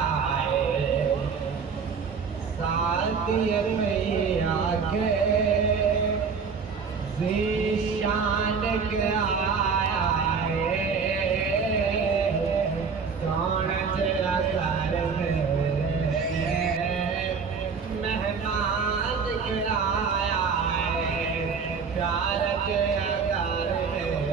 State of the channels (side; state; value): left; quieter; 5.6 dB